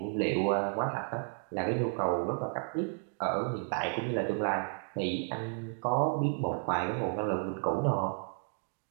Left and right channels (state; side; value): silent; left; 56 dB below the other